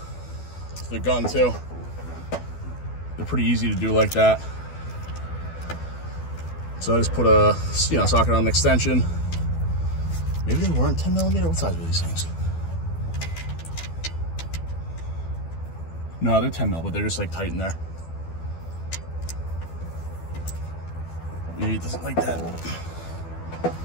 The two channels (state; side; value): late; right; 12 ms